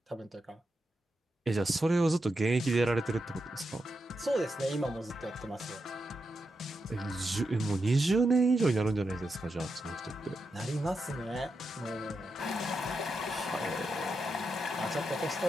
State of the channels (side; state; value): both; normal; correlation 0.86